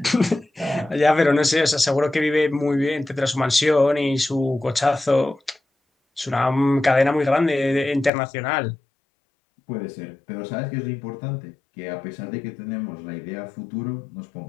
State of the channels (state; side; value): drops out; right; at 8.1 s